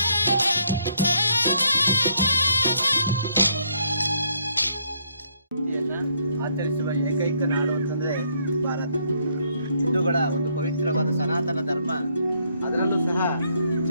ಆಚರಿಸುವ ಏಕೈಕ ನಾಡು ಅಂತಂದ್ರೆ ಭಾರತ. ಹಿಂದೂಗಳ ಒಂದು ಪವಿತ್ರವಾದ ಸನಾತನ ಧರ್ಮ, ಅದರಲ್ಲೂ ಸಹ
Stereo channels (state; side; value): inverted; both; correlation -0.71